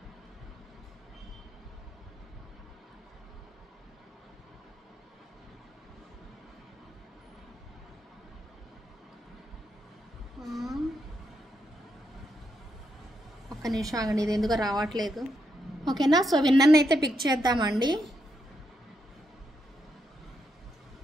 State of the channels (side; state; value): both; normal; correlation 0.81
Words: ఒక్క నిమిషం ఆగండి, ఇది ఎందుకో రావట్లేదు. ఓకేనా. సో విన్నర్ని అయితే పిక్ చేద్దామండి.